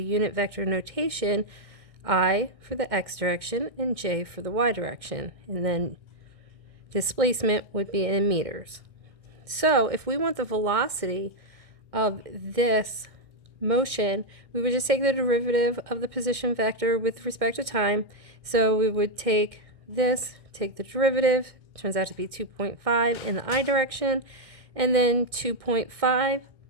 unit vector notation, I for the X direction and J for the Y direction, and then displacement would be in meters. So if we want the velocity of this motion, we would just take the derivative of the position vector with respect to time. So we would take this, take the derivative, turns out to be 2.5 in the I direction, and then 2.5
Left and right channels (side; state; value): left; late; 1.6 ms